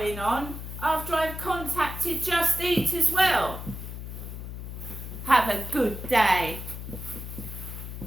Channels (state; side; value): noise; left; hum, 8 dB below the sound